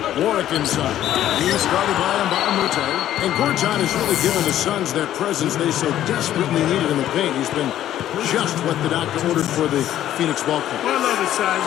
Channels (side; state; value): right; quieter; 12.2 dB